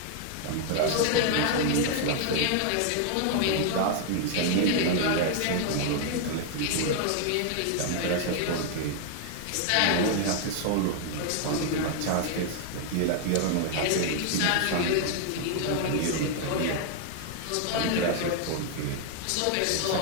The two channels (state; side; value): different; both; correlation 0.00